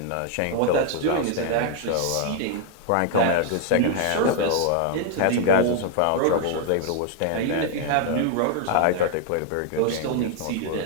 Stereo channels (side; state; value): both; different; correlation 0.00